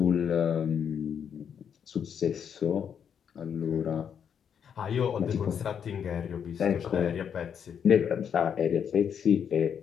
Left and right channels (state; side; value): quieter; right; 7.8 dB